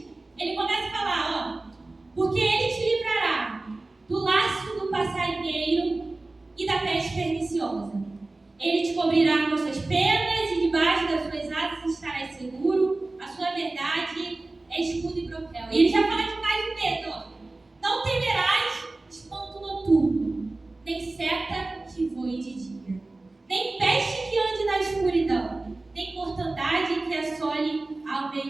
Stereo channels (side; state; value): left; quieter; 3.1 dB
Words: ele começa a falar, porque ele te livrará do laço do passarinheiro e da peste perniciosa. Ele te cobrirá com suas penas e debaixo das suas asas estarás seguro. A sua verdade é escudo e broquel. E ele já fala demais de medo. Não temerás espanto noturno, nem seta que voe de dia, nem peste que ande na escuridão, nem mortandade que assole ao